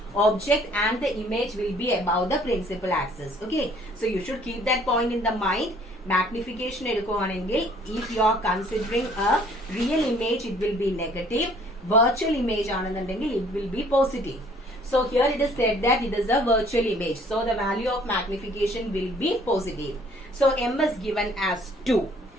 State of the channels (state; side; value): normal; both; correlation 0.58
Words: Object and the image will be above the principal axis. Okay, so you should keep that point in the mind. Magnification എടുക്കുവാണെങ്കിൽ if you are considering a real image, it will be negative. Virtual image ആണെന്നുണ്ടെങ്കിൽ it will be positive. So here it is said that it is a virtual image. So the value of magnification will be positive. So M is given as 2.